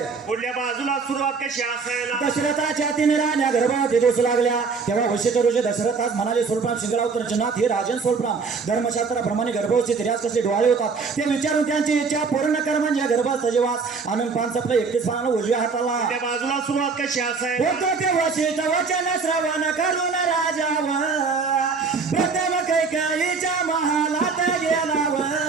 पुढल्या बाजूला सुरुवात कशी असायला दशरथाच्या 3 राण्या गर्भात दिवस लागल्या तेव्हा वशिष्ठ ऋषी दशरथास म्हणाले सोलपान शिंगडावतर जनात हे राजन सोलपान धर्मशास्त्राप्रमाणे गर्भवती स्त्रियास कसे डोहाळे होतात ते विचारून त्यांची इच्छा पूर्ण कर म्हणजे गर्भात सजीवास आनंद पान चपला 31 पानाला उजव्या हाताला. पुढल्या बाजूला सुरुवात कशी असायला होतो ते वशिष्ठ वचन श्रवण करून राजावर प्रथम कैकेयीच्या महालात गेलाव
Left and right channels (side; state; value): left; quieter; 4.9 dB